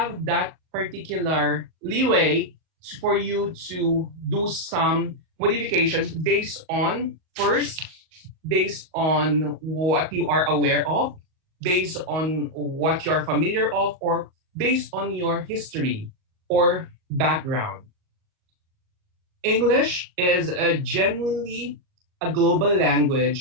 that particular leeway for you to do some modifications based on first based on what you are aware of, based on what you're familiar of, or based on your history or background. English is a genuinely a global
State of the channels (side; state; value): left; late; 38 ms